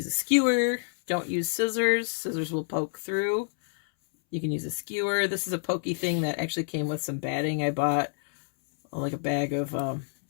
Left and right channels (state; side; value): silent; right; 60 dB below the other